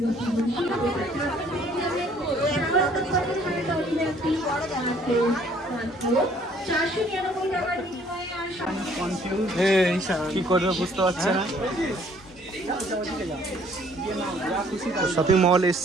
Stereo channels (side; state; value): both; normal; correlation 0.60